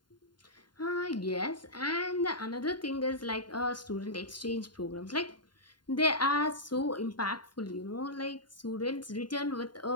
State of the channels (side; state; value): right; late; 0.71 ms